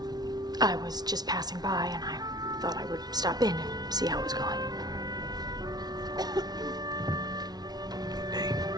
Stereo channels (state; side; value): late; left; 0.19 ms